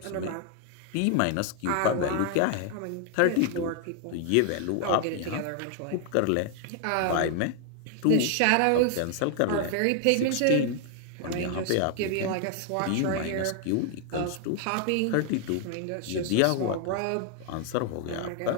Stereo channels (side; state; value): both; different; correlation 0.00